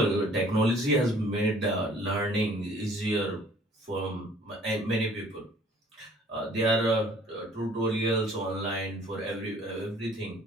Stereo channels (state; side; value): normal; both; correlation 0.55